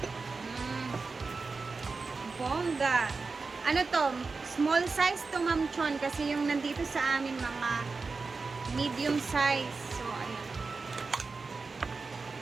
Bongga. Ano to? Small size to, Ma'am Chon, kasi yung nandito sa amin mga medium size. So, ayan.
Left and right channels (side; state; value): left; quieter; 4.2 dB